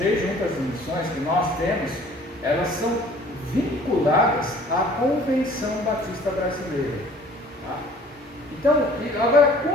juntas de missões que nós temos, elas são vinculadas à Convenção Batista Brasileira. Tá? Então, agora,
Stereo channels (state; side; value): normal; both; correlation 0.52